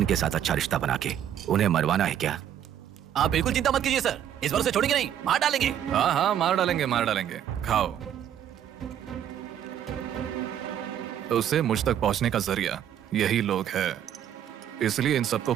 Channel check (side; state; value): left; quieter; 10.1 dB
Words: साथ अच्छा रिश्ता बना के उन्हें मरवाना है क्या? आप बिल्कुल चिंता मत कीजिए सर, इस बार उसे छोड़ेंगे नहीं, मार डालेंगे। हाँ हाँ, मार डालेंगे, मार डालेंगे। खाओ। उसे मुझ तक पहुंचने का जरिया यही लोग है, इसलिए इन सबको